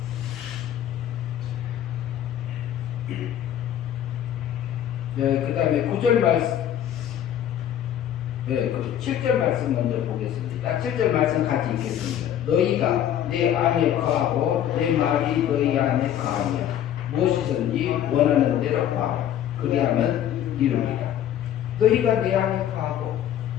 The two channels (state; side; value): quieter; right; 10.7 dB